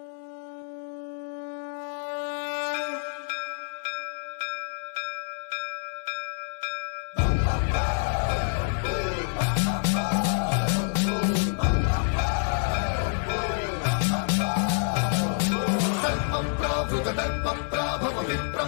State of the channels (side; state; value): right; silent; 60 dB below the other